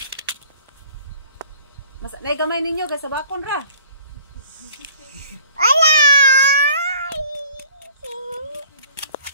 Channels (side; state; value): both; inverted; correlation -0.53